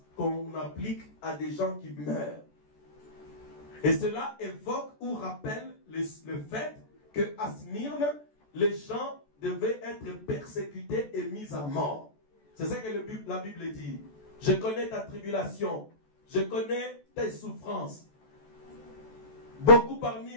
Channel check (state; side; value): late; right; 14 ms